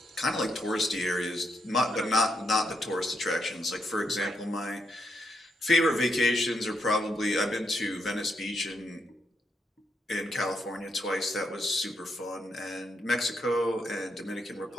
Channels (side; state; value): both; normal; correlation 0.79